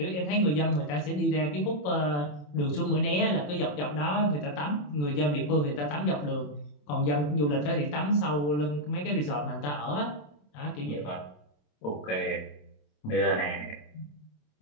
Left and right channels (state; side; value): late; right; 27 ms